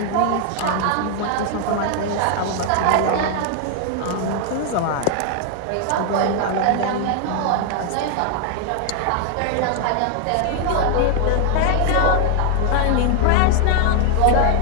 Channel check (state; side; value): different; both; correlation 0.00